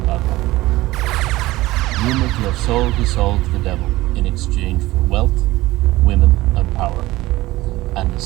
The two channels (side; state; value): left; quieter; 18.1 dB